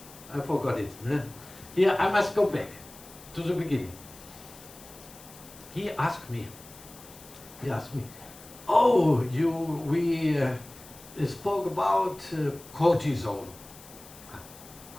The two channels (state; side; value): noise; left; hiss, 19 dB below the sound